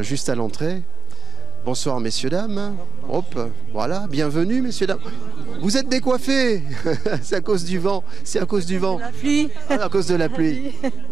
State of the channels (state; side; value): quieter; left; 4.4 dB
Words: à l'entrée. Bonsoir messieurs, dames. Hop, voilà, bienvenue messieurs, dames. Vous êtes décoiffés. C'est à cause du vent. C'est à cause du vent. La pluie. À cause de la pluie.